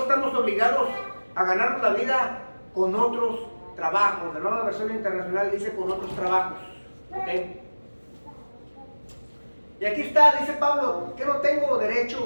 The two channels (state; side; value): inverted; both; correlation -1.00